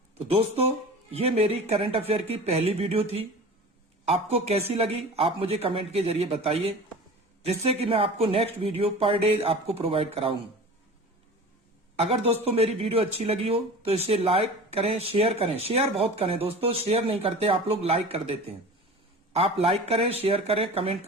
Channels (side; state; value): both; normal; correlation 0.37